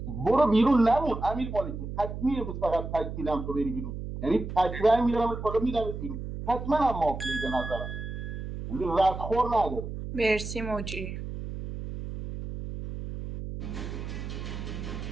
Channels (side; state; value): right; noise; hum, 7 dB below the sound